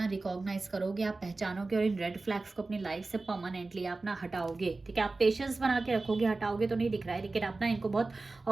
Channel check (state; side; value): quieter; left; 3.5 dB